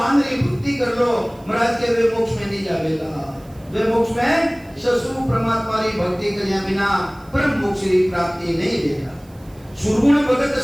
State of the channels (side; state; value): right; noise; hiss, 29 dB below the sound